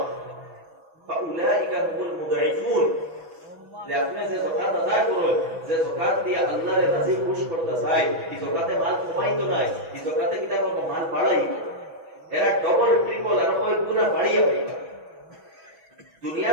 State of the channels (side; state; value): left; late; 6.1 ms